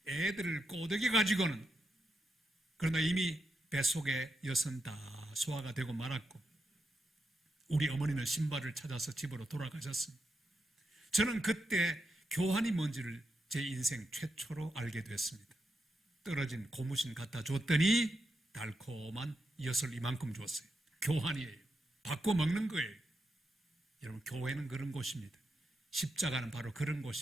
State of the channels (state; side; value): normal; both; correlation 0.85